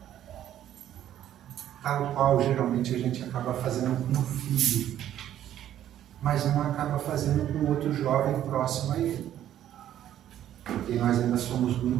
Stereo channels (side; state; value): left; quieter; 11.5 dB